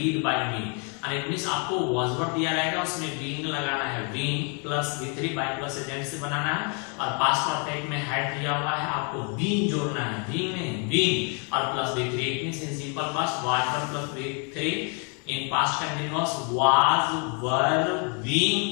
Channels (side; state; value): right; quieter; 37.2 dB